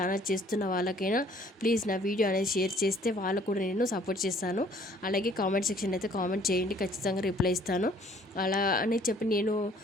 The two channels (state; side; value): normal; both; correlation 0.58